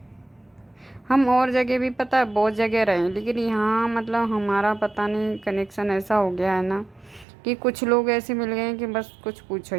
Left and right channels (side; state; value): left; drops out; at 7.2 s